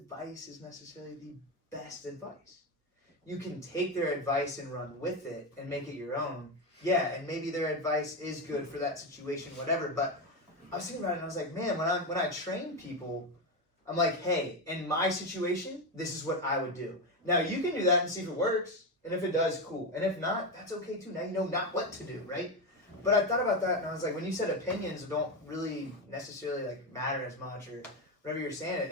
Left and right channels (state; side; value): normal; both; correlation 0.13